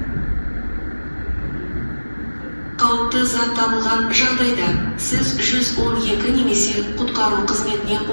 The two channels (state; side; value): inverted; both; correlation -1.00